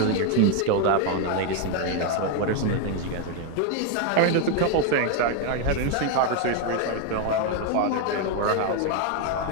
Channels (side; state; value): both; different; correlation 0.01